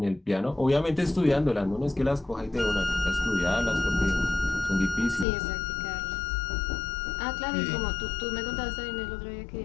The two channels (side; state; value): right; drops out; at 5.2 s